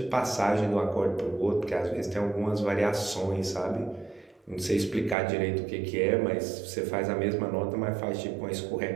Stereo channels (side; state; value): left; drops out; at 5.2 s